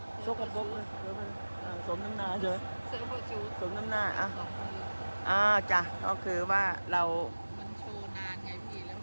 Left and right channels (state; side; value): inverted; both; correlation -1.00